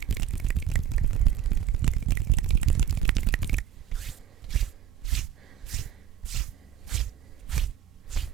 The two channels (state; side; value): quieter; left; 10.1 dB